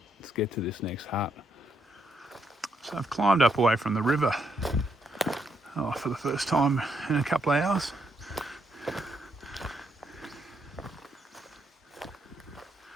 let's get to this next hut. So I've climbed up away from the river for the first time in a couple of hours.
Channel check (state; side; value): normal; both; correlation 0.77